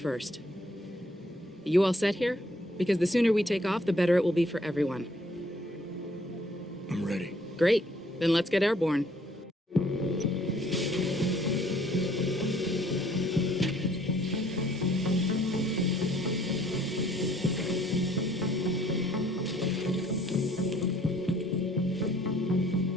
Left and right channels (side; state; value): both; normal; correlation 0.62